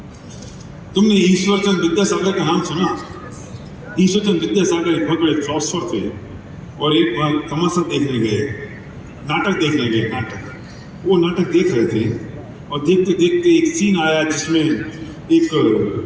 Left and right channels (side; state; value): both; identical; correlation 1.00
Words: तुमने ईश्वरचंद विद्यासागर का नाम सुना? ईश्वरचंद विद्यासागर एक बहुत बड़े फिलोसफर थे और एक बार तमाशा देखने गए, नाटक देखने गए। वो नाटक देख रहे थे और देखते देखते एक सीन आया जिसमें एक